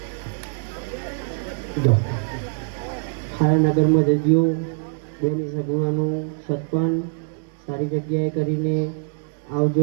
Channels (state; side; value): silent; left; 63 dB below the other